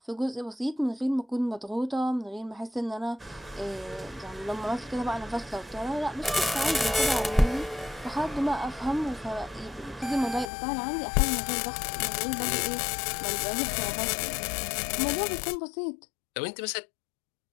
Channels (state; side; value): drops out; right; at 10.5 s